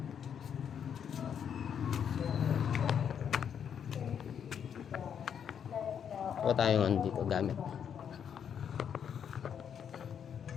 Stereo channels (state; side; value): quieter; right; 8.1 dB